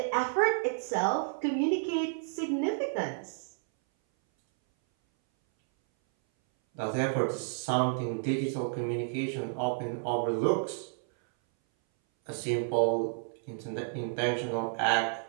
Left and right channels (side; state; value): left; silent; 57 dB below the other